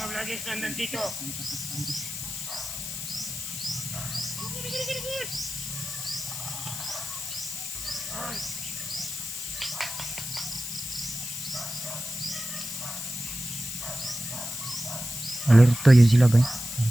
Alerto yun sila ba?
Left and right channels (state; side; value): noise; left; hiss, 6 dB below the sound